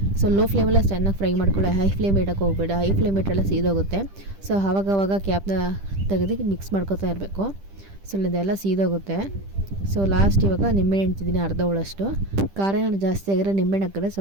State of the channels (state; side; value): late; left; 10 ms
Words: ಸೊ ಲೋ ಫ್ಲೇಮಲ್ಲಿ ಚೆನ್ನಾಗಿ ಫ್ರೈ ಮಾಡ್ಕೊಳ್ಳಿ, ಹೈ ಫ್ಲೇಮ್ ಇಡೋಕ್ಕೆ ಹೋಗಬೇಡ, ಹೈ ಫ್ಲೇಮ್ ಇಟ್ಟರೆಲ್ಲ ಸೀದೋಗುತ್ತೆ. ಸೊ ಆವಾಗ ಕ್ಯಾಪ್ನ ತೆಗೆದು ಮಿಕ್ಸ್ ಮಾಡ್ಕೊತಾ ಇರಬೇಕು. ಸೊ ಇದೆಲ್ಲ ಸೀದೋಗುತ್ತೆ. ಸೊ ಲಾಸ್ಟ್ ಇವಾಗ ನಿಂಬೆಹಣ್ಣು ಇಡ್ತಿದ್ದೀನಿ, ಅರ್ಧ ಹೋಳಷ್ಟು. ಖಾರ ಏನಾದ್ರು ಜಾಸ್ತಿ ಆಗಿದ್ರೆ ನಿಂಬೆಹಣ್ಣು ಹಾಕಿದ್ರೆ